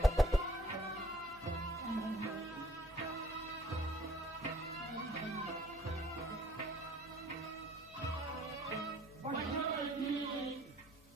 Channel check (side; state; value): both; normal; correlation 0.58